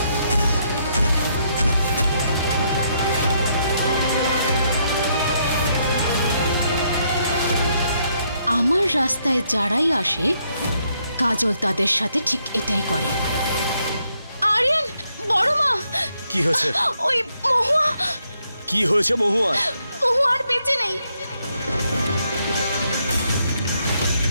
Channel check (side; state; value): both; inverted; correlation -0.75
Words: আমার রাস্তায় যারাই আসে কাজল তাদের সাথে ঠিক এটাই করে। আরিয়ান, বড় মা। কি হয়েছে? ওই মহুয়া। কি হয়েছে মহুয়া? মহুয়া আর বেঁচে নেই।